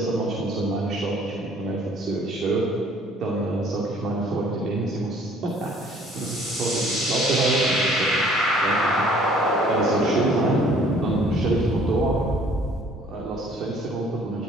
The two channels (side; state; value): both; normal; correlation 0.56